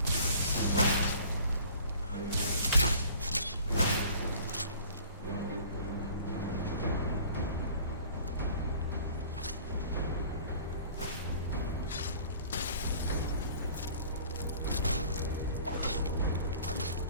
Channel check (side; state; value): both; inverted; correlation -0.48